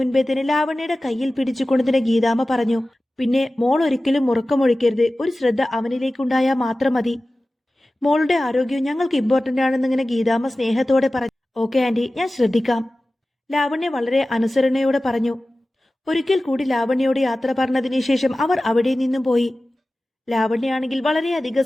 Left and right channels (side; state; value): both; normal; correlation 0.96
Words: തന്നെ ലാവണ്യയുടെ കയ്യിൽ പിടിച്ചുകൊണ്ടതിന് ഗീതാമ്മ പറഞ്ഞു. പിന്നെ മോൾ ഒരിക്കലും ഉറക്കമൊഴിക്കരുത്. ഒരു ശ്രദ്ധ അവനിലേക്കുണ്ടായാൽ മാത്രം മതി. മോളുടെ ആരോഗ്യം ഞങ്ങൾക്ക് ഇമ്പോർട്ടന്റ് ആണെന്നിങ്ങനെ ഗീതാമ്മ സ്നേഹത്തോടെ പറഞ്ഞു. ഓക്കെ ആന്റി, ഞാൻ ശ്രദ്ധിക്കാം. ലാവണ്യ വളരെ അനുസരണയോടെ പറഞ്ഞു. ഒരിക്കൽ കൂടി ലാവണ്യയോട് യാത്ര പറഞ്ഞതിന് ശേഷം അവർ അവിടെ നിന്നും പോയി. ലാവണ്യാണെങ്കിൽ വളരെയധികം